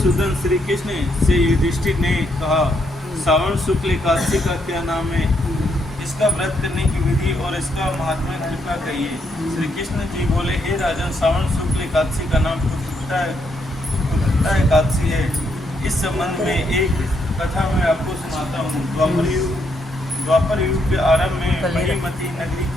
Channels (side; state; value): both; normal; correlation 0.76